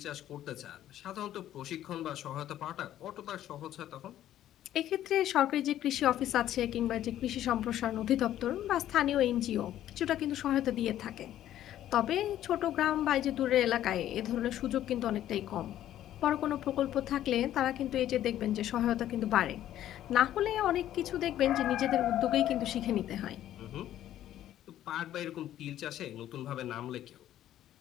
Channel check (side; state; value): right; quieter; 12.3 dB